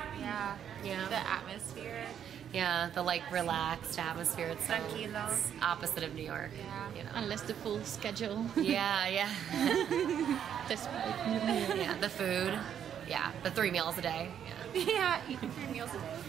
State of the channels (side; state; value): left; quieter; 9.0 dB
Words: Yeah. The atmosphere. Yeah, the like relaxed atmosphere. It's so Tranquilo. opposite of New York. Yeah. You know? Unless the full schedule. Yeah. Despite. Yeah, the food. Yeah, the 3 meals a day. Yeah, eating 3 meals